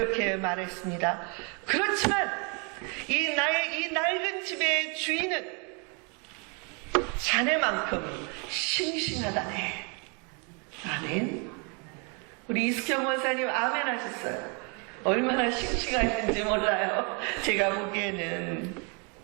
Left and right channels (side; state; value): left; quieter; 34.3 dB